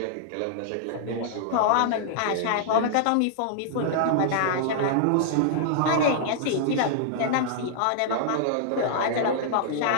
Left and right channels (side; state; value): both; different; correlation -0.01